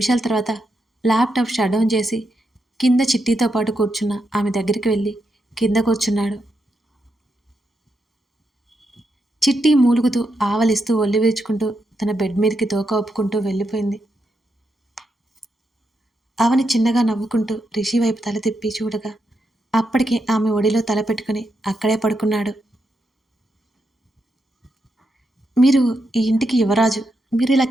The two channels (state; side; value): normal; both; correlation 0.83